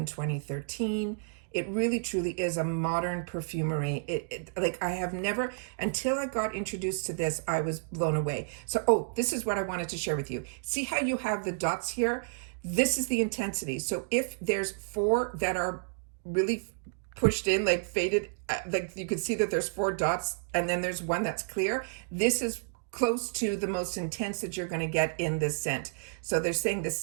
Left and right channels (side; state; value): left; silent; digital silence